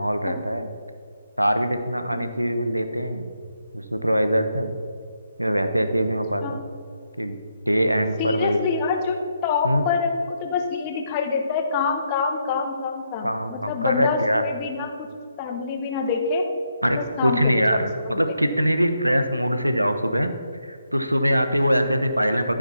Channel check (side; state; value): both; inverted; correlation -0.79